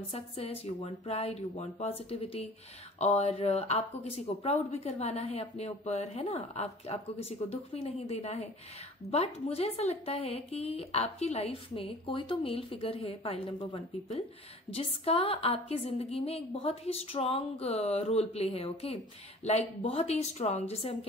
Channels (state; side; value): normal; both; correlation 0.46